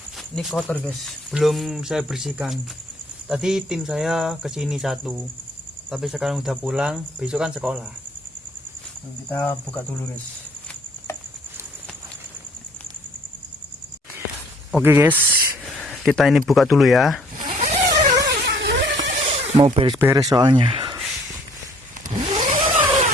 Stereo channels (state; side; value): normal; both; correlation 0.59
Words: Ini kotor, guys. Belum saya bersihkan. Tadi tim saya kesini satu, tapi sekarang udah pulang. Besok kan sekolah. Kita buka dulu, guys. Oke, guys, kita ini buka dulu ya. Mau beres-beres soalnya.